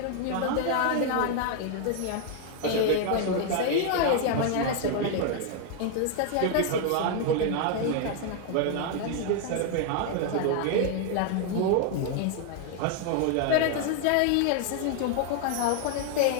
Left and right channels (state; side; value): different; both; correlation 0.00